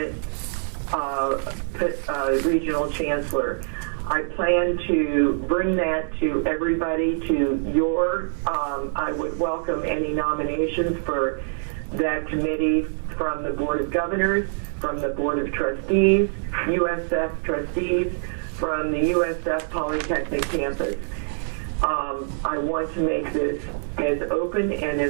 regional chancellor. I plan to bring that to everybody, to your, I would welcome any nominations for that committee from the Board of Governors, from the Board of Trustees, USF trustees, from the USF Polytechnic campus. I want to make this as open and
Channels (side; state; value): left; silent; 62 dB below the other